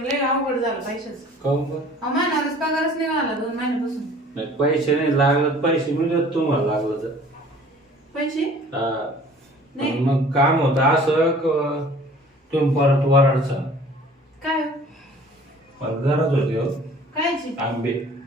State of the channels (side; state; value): both; normal; correlation 0.50